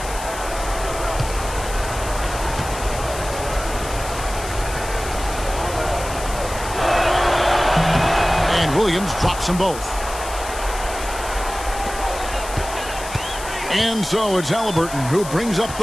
And Williams drops them both. And so it's Halliburton who brings up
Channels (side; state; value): left; noise; hiss, 11 dB below the sound